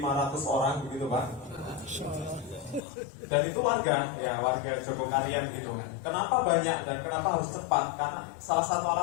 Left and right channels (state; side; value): drops out; right; at 2.8 s